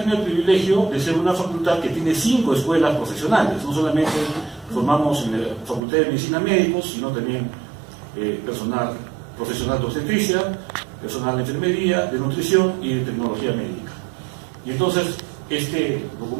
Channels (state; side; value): drops out; left; at 5.8 s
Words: el privilegio de ser una facultad que tiene 5 escuelas profesionales. No solamente formamos en la Facultad de Medicina médicos, sino también personal profesional de obstetricia, personal de enfermería, de nutrición y de tecnología médica. Y entonces, este